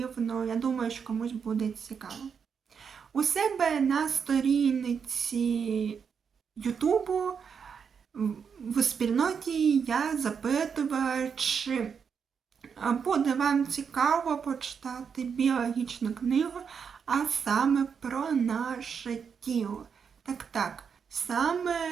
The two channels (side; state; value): left; quieter; 6.6 dB